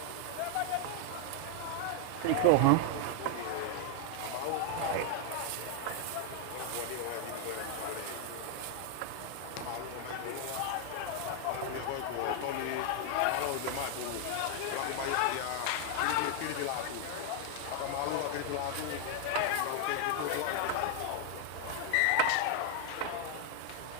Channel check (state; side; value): different; both; correlation 0.00